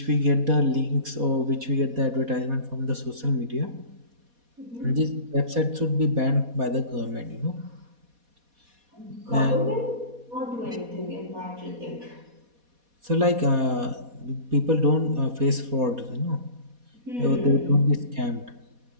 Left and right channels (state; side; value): late; left; 4.2 ms